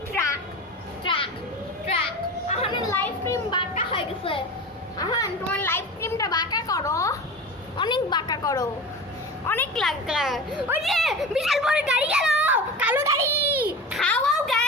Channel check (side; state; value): both; normal; correlation 0.30